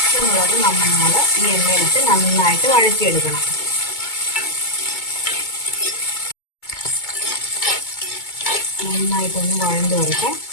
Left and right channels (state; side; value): late; right; 2.2 ms